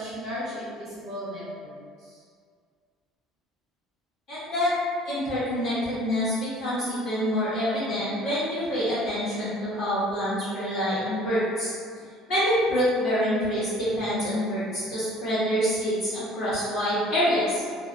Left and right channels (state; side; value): normal; both; correlation 0.51